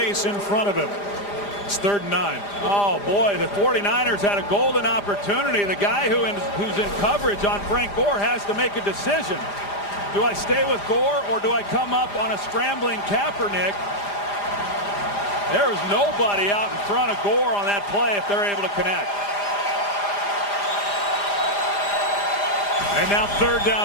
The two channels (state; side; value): late; right; 5.0 ms